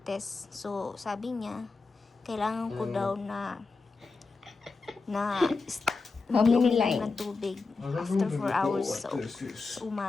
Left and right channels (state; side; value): quieter; right; 4.1 dB